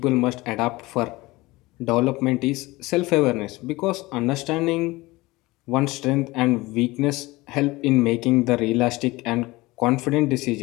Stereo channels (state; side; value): quieter; right; 20.9 dB